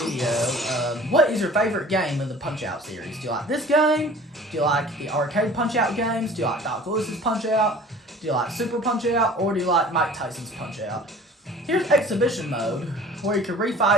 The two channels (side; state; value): both; normal; correlation 0.46